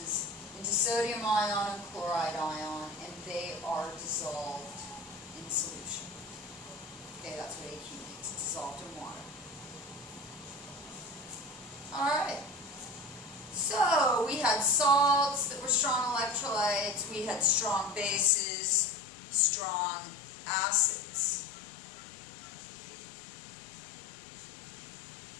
into sodium ion and chloride ion, and they are dissolved in solution. Okay, that's what AQ means. It's dissolved in water. Alright. So we had salts that were strong electrolytes, we had strong bases, strong acids.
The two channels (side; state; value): right; drops out; at 18.3 s